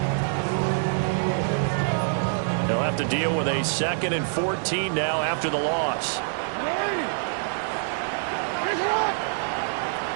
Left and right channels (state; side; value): silent; left; digital silence